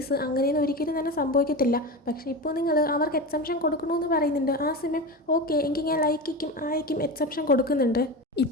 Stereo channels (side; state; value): both; normal; correlation 0.24